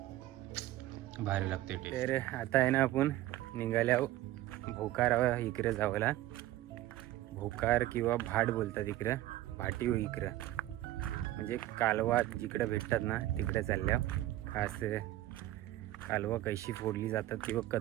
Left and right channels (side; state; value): left; quieter; 15.3 dB